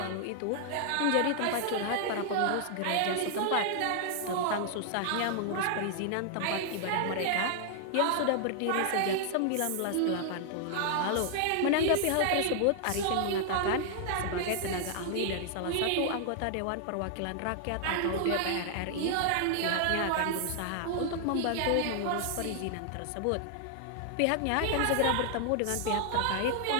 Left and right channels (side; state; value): both; different; correlation 0.00